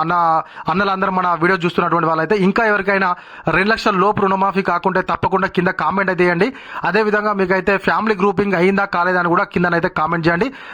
అన్నలందరూ మన వీడియో చూస్తున్నటువంటి వాళ్ళైతే ఇంకా ఎవరికైనా 2 లక్షల లోపు రుణమాఫీ కాకుంటే తప్పకుండా కింద కామెంట్ అయితే చేయండి. అదేవిధంగా మీకైతే ఫ్యామిలీ గ్రూపింగ్ అయిందా కాలేదని కూడా కిందనైతే కామెంట్ చేయండి.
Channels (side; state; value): both; identical; correlation 1.00